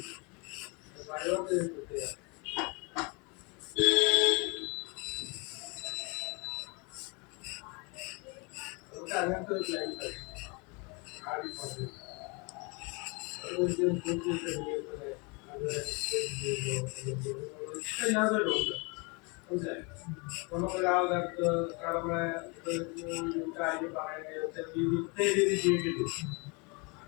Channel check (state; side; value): quieter; right; 30.8 dB